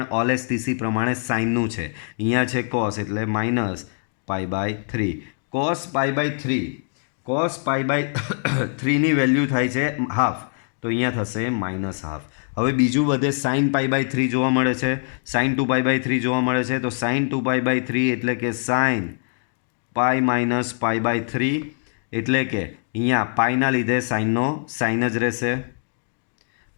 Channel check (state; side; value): silent; right; digital silence